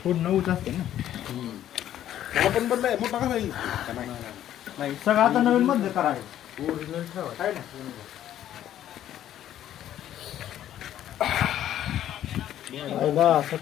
पूर्ण उच असते ना. पण बदलाय मोठा कसा येईल नाही सगळं आता नवीन मध्ये करायचं. ओरिजिनल ठेवा काय ना.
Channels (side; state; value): right; quieter; 11.6 dB